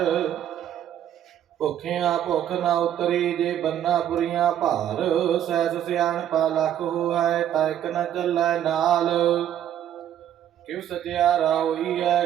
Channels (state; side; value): quieter; left; 10.7 dB